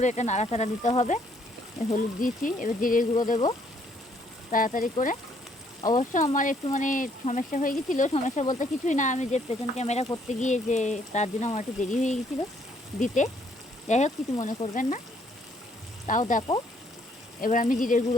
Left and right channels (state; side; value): normal; both; correlation 0.67